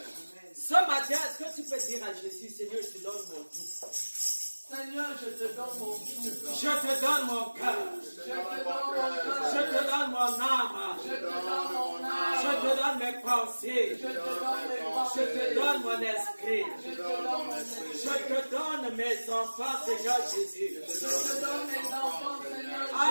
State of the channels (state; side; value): inverted; both; correlation -1.00